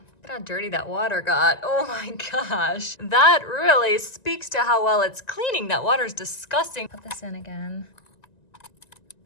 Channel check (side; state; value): right; late; 1.9 ms